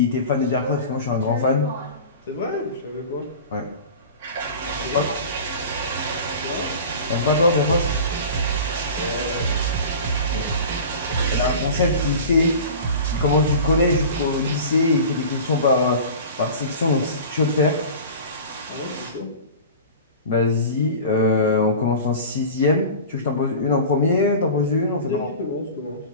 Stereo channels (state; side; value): inverted; both; correlation -0.36